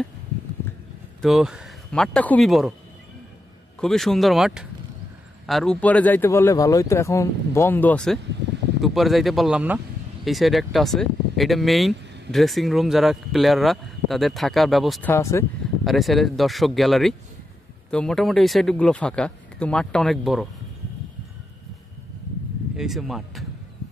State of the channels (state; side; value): normal; both; correlation 0.86